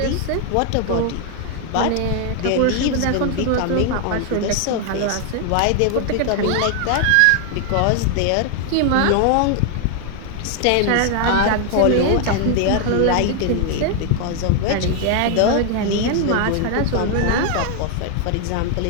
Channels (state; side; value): different; both; correlation 0.00